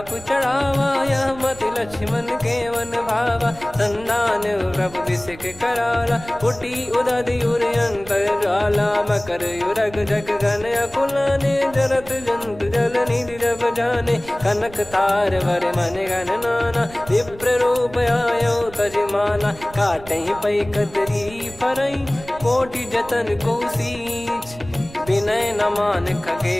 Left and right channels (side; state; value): right; noise; rumble, 18 dB below the sound